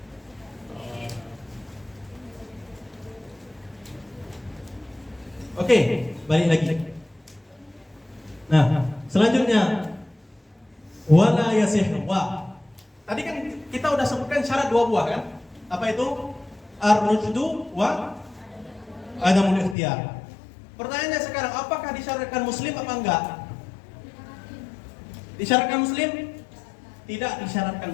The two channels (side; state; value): right; drops out; at 19.8 s